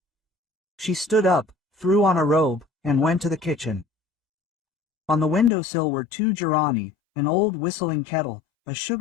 She stood up, threw on a robe, and went to the kitchen. On the windowsill were 2 gerani, an old whistling kettle, a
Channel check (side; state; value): right; drops out; at 5.5 s